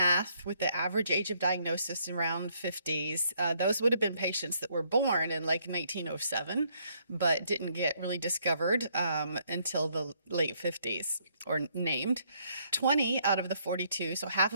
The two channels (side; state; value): both; inverted; correlation -0.70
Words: with the average age of diagnosis around 50s, those would have been patients that were born in like 1907, but didn't get really discovered until the late 50s or named. 20 out of the 42, so half